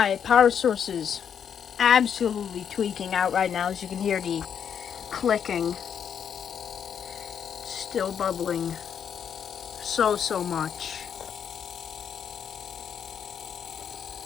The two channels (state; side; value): quieter; right; 8.0 dB